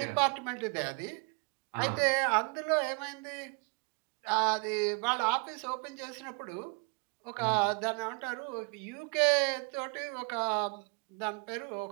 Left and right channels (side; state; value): left; quieter; 33.1 dB